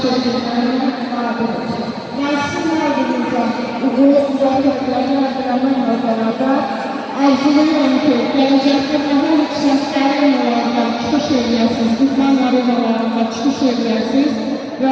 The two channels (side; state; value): both; identical; correlation 1.00